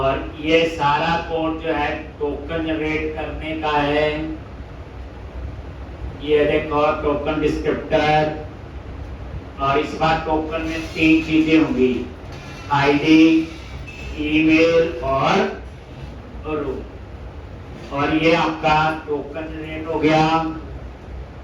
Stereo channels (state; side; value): identical; both; correlation 1.00